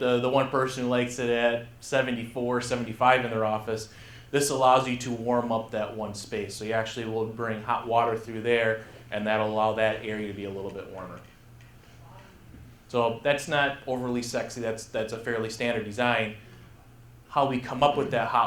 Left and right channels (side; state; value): both; identical; correlation 1.00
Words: one person who likes it at 74, 75 in their office. This allows you to warm up that one space. So you actually will bring hot water through there, and that'll allow that area to be a little bit warmer. So that's not overly sexy. That's a fairly standard design. How we come up with that